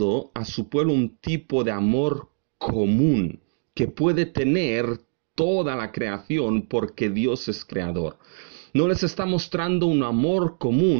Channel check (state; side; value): silent; left; digital silence